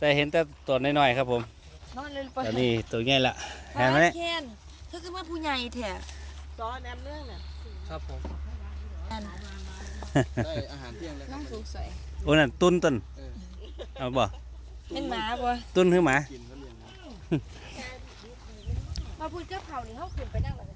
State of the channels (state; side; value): identical; both; correlation 1.00